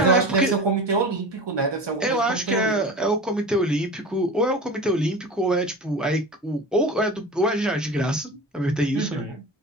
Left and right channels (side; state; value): both; normal; correlation 0.32